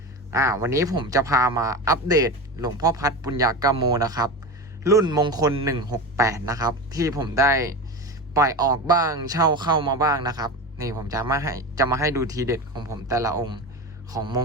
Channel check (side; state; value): both; normal; correlation 0.24